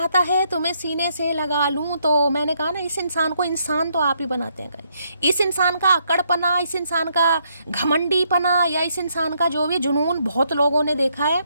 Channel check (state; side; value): inverted; both; correlation -0.74